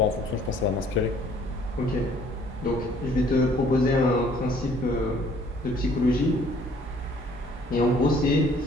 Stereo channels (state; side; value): normal; both; correlation 0.58